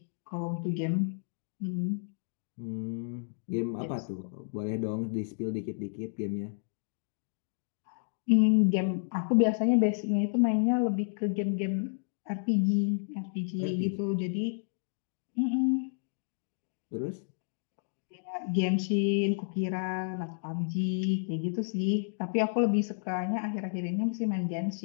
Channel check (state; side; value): silent; right; digital silence